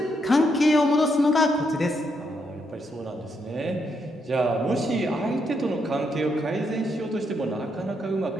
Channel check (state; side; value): normal; both; correlation 0.78